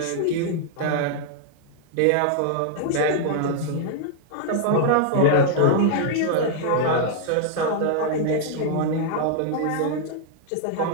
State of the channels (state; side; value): different; both; correlation -0.01